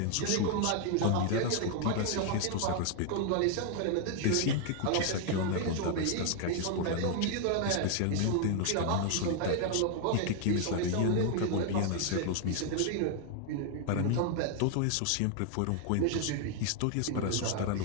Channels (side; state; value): both; different; correlation 0.00